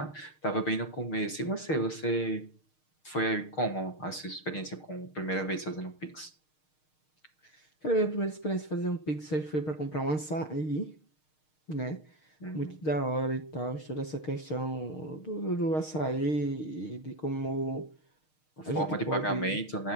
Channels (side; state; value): right; late; 6.5 ms